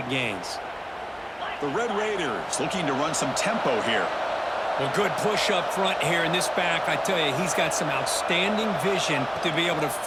gains. The Red Raiders looking to run some tempo here. Well, good push up front here in this back. I tell you, he's got some outstanding vision to be able to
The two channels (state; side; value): identical; both; correlation 1.00